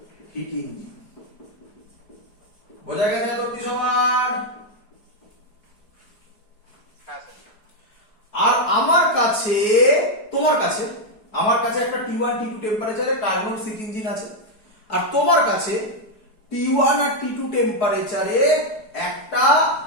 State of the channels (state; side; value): late; right; 4.7 ms